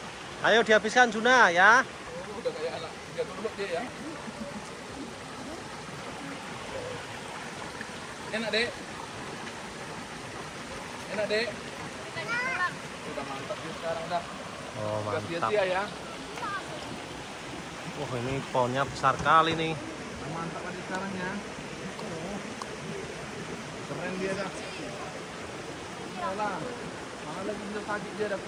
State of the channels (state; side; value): identical; both; correlation 1.00